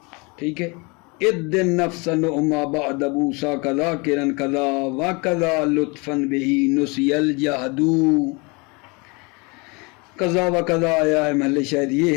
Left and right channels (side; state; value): right; quieter; 28.8 dB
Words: ٹھیک ہے. اد نفس نعما بعد بوسا کذا کرن کذا و کذا لطفا بہی نسی الجہد. کذا و کذا آیا ہے، محل شاید یہ